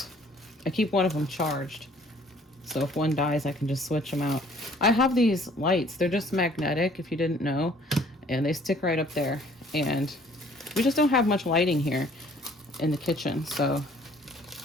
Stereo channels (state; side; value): normal; both; correlation 0.57